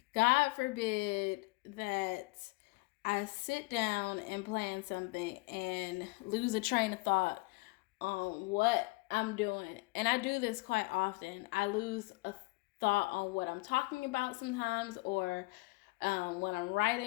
God forbid that I sit down and plan something and lose a train of thought on what I'm doing. And I do this quite often. I lose a thought on what I'm talking about sometimes or when I'm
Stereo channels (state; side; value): quieter; right; 25.2 dB